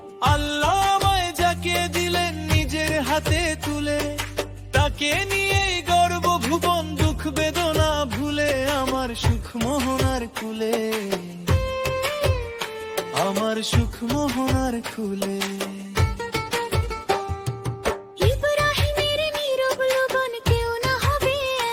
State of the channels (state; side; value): identical; both; correlation 1.00